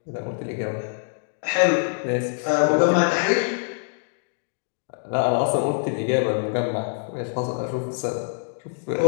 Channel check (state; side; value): silent; right; 62 dB below the other